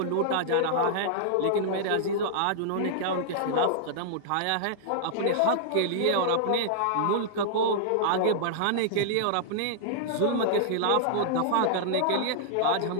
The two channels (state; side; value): different; both; correlation -0.02